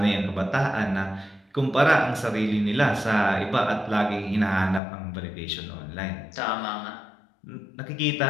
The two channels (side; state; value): right; drops out; at 4.8 s